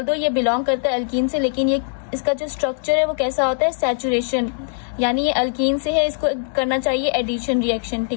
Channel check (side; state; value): right; silent; digital silence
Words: ये बिलोंग करता है अल्कीन से, लेकिन ये इसका जो स्ट्रक्चर है वो कैसा होता है, सैचुरेशन, यानी ये अल्कीन से है, इसको करना चाहिए एडिशन रिएक्शन,